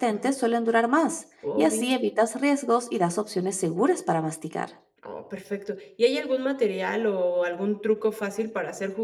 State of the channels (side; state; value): both; identical; correlation 1.00